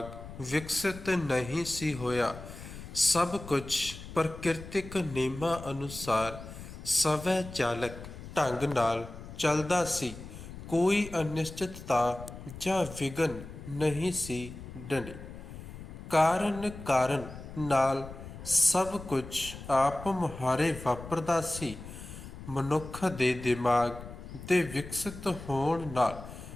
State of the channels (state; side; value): noise; left; rumble, 13 dB below the sound